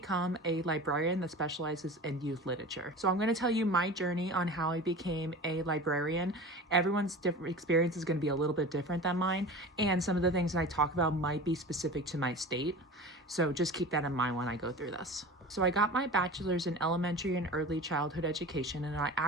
a librarian that specializes in youth literature? So I'm going to tell you my journey on how I became a librarian. Everyone's different experience is going to be a little bit different than mine, and some of the things that I talk about might be specific to my state. So just keep that in mind when I go through this. So I got my bachelor's in elementary and early childhood education, and I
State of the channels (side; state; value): both; normal; correlation 0.35